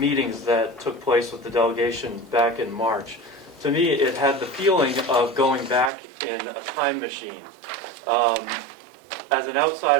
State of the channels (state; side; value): drops out; left; at 5.9 s